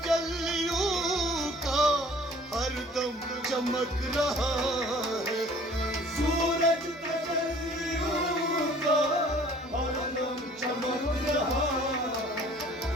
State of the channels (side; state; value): both; normal; correlation 0.52